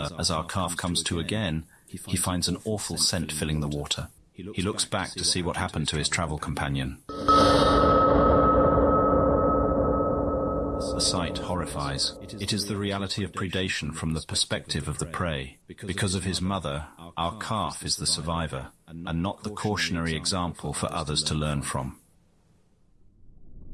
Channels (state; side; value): identical; both; correlation 1.00